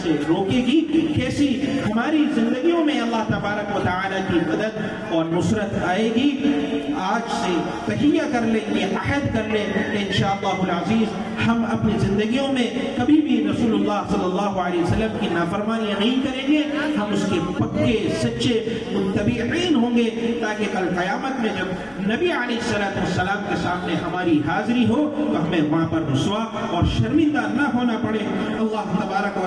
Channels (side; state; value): both; identical; correlation 1.00